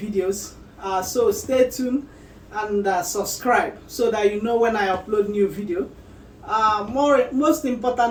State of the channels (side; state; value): both; identical; correlation 1.00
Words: So stay tuned and subscribe so that you know when I upload new video. Most